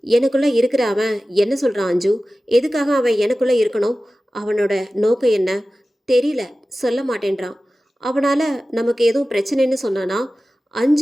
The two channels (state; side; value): normal; both; correlation 0.96